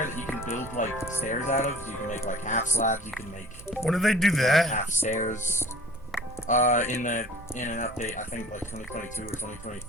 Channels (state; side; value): noise; right; rumble, 18 dB below the sound